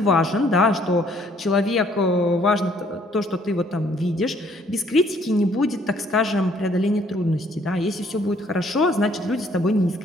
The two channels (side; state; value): both; normal; correlation 0.63